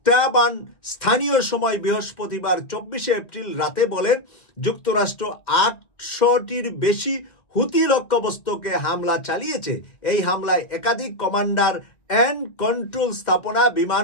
স্থানীয় সময় বৃহস্পতিবার 24শে এপ্রিল রাতে বলেন, যুক্তরাষ্ট্র 800টির বেশি হুতি লক্ষ্যবস্তুকে হামলা চালিয়েছে। এই হামলায় একাধিক কমান্ডার অ্যান্ড কন্ট্রোল স্থাপনা,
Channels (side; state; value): right; late; 2.1 ms